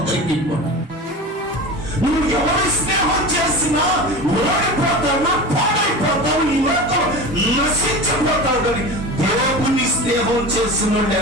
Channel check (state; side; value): normal; both; correlation 0.31